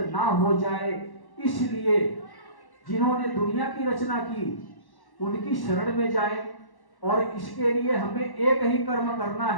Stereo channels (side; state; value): right; late; 1.1 ms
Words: ना हो जाए, इसलिए जिन्होंने दुनिया की रचना की उनकी शरण में जाएं। और इसके लिए हमें एक ही कर्म करना